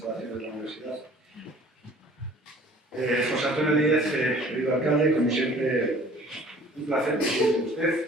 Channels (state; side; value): normal; both; correlation 0.50